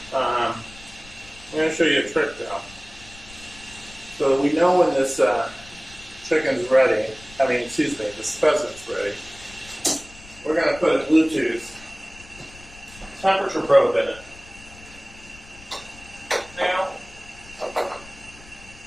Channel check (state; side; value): noise; left; rumble, 20 dB below the sound